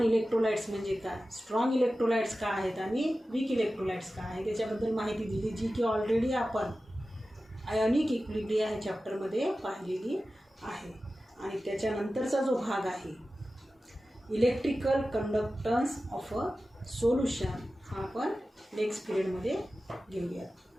इलेक्ट्रोलाइट्स म्हणजे काय, स्ट्रॉंग इलेक्ट्रोलाइट्स काय आहेत आणि वीक इलेक्ट्रोलाइट्स काय आहे त्याच्याबद्दल माहिती दिली, जी की ऑलरेडी आपण आयोनिक इक्विलिब्रियम ह्या चॅप्टरमध्ये पाहिलेली आहे. आणि त्याच्यानंतरचा जो भाग आहे electrical conductance of a solution हा आपण नेक्स्ट पिरियडमध्ये घेऊया.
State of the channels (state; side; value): normal; both; correlation 0.94